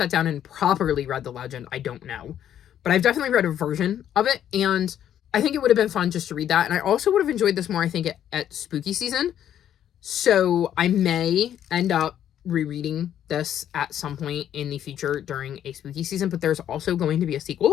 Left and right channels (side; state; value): right; quieter; 10.4 dB